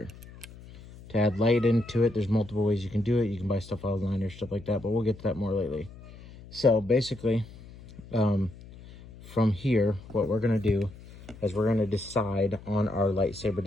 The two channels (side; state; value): left; noise; hum, 18 dB below the sound